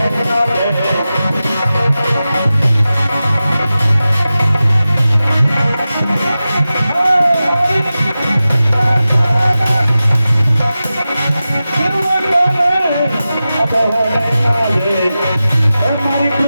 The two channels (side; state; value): both; inverted; correlation -0.94